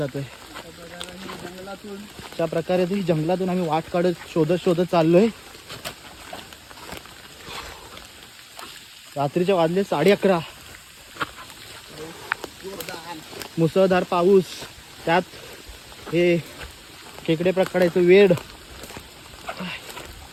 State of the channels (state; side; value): identical; both; correlation 1.00